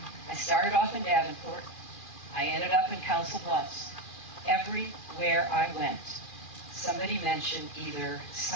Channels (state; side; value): late; right; 2.4 ms